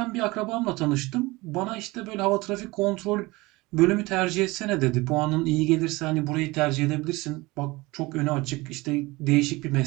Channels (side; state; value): left; quieter; 22.1 dB